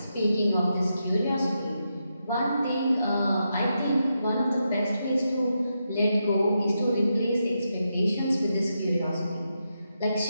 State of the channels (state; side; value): inverted; both; correlation -0.85